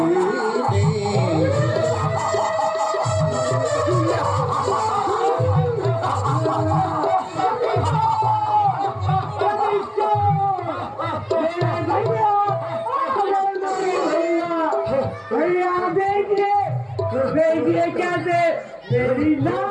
देखिए कैसे मेरी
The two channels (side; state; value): both; identical; correlation 1.00